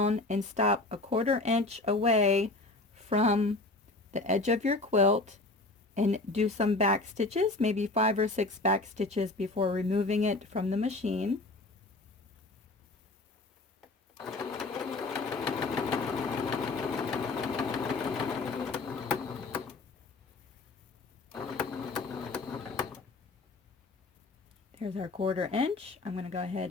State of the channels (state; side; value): quieter; right; 3.1 dB